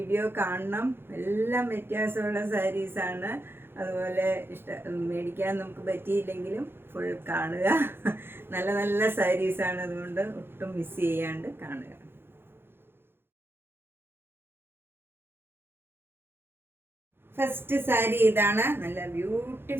കാണണം. എല്ലാം വ്യത്യാസമുള്ള സാരീസാണ്. അതുപോലെ മേടിക്കാൻ നമുക്ക് പറ്റിയില്ലെങ്കിലും ഫുൾ കാണുക. നല്ല നല്ല സാരീസാണ്, അതുകൊണ്ട് ഒട്ടും മിസ് ചെയ്യാണ്ട് കാണുക. ഫസ്റ്റ് സാരി ഇതാണ്. നല്ല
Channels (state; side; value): late; left; 0.11 ms